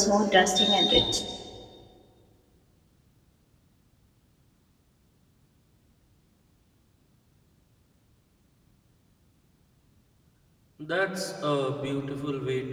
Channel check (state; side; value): identical; both; correlation 1.00